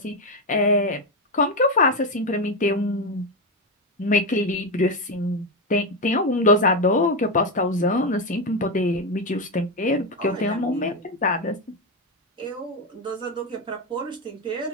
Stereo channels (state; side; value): normal; both; correlation 0.09